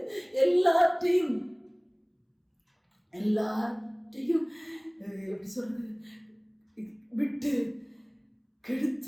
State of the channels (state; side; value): identical; both; correlation 1.00